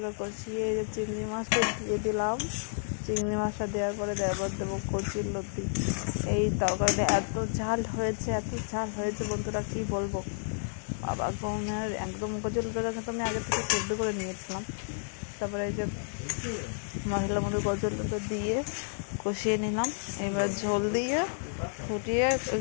কষিয়ে এই যে চিংড়ি মাছটা দিয়ে দিলাম। চিংড়ি মাছটা দেওয়ার পরে দেবো কচুর লতি। এই তরকারিটা এত ঝাল হয়েছে বন্ধুরা, কি বলবো। বাবা গমের একদম কচুর লতিটা কিন্তু আমি আগে থেকে সেদ্ধ করে নিয়েছিলাম। তারপরে এই যে মশলার মধ্যে কচুর লতি দিয়ে কষিয়ে নিলাম। এবার ঝোল দিয়ে ফুটিয়ে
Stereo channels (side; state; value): right; silent; digital silence